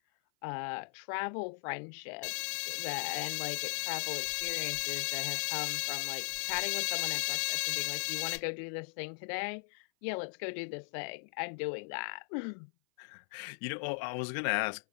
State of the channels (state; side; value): silent; right; 53 dB below the other